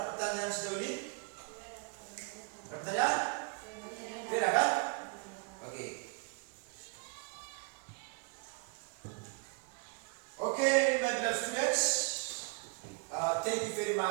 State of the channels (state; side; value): quieter; left; 34.5 dB